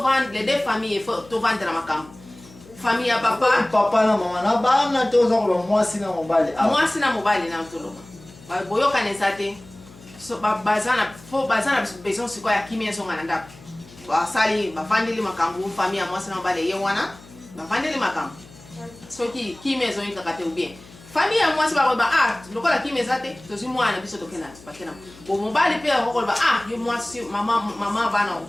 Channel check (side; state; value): left; noise; hum, 22 dB below the sound